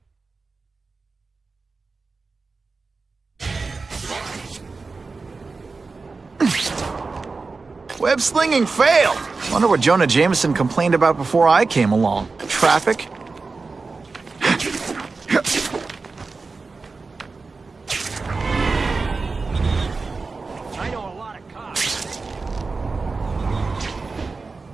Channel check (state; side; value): quieter; left; 4.1 dB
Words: Web slinging failed. Wonder what Jonah Jameson complained about before I came along. Traffic? I know a lot of cops.